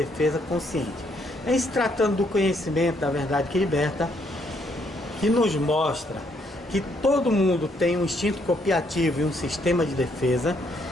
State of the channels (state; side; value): normal; both; correlation 0.71